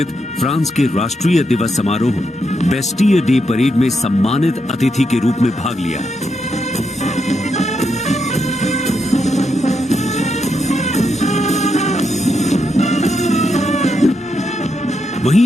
फ्रांस के राष्ट्रीय दिवस समारोह बेस्टियर डे परेड में सम्मानित अतिथि के रूप में भाग लिया।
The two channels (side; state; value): both; normal; correlation 0.81